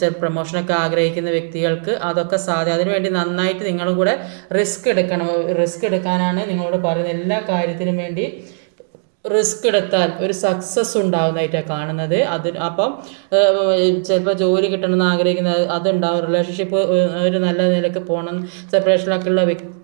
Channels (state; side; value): silent; left; digital silence